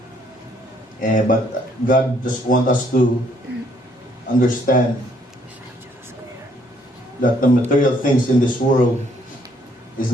But God just wants us to understand that the material things in this world is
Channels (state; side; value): normal; both; correlation 0.67